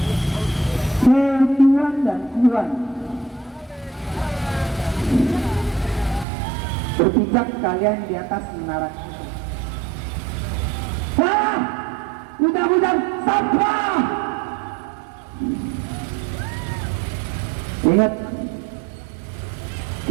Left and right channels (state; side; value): drops out; left; at 6.2 s